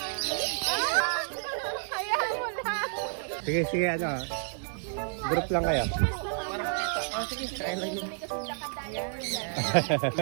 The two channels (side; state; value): left; silent; digital silence